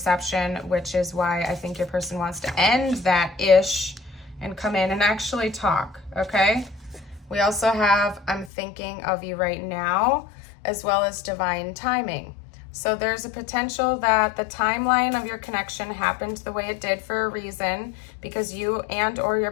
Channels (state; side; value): drops out; right; at 8.5 s